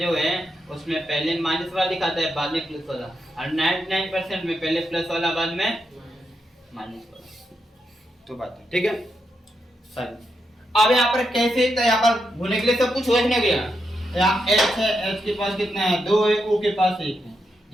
जो है उसमें पहले माइनस वाला दिखाता है बाद में प्लस वाला, और 99% में पहले प्लस वाला बाद में माइनस वाला, तो बात है। ठीक है सही। अब यहाँ पर कैसे, तो यहाँ पर भूलने के लिए सब कुछ लिखने गया। यहाँ H है, H के पास कितना है? 2 है, O के पास 1 है।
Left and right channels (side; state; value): both; normal; correlation 0.84